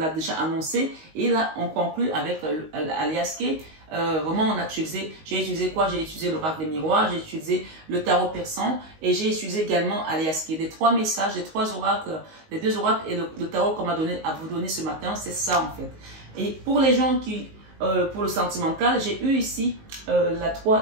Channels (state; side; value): late; left; 19 ms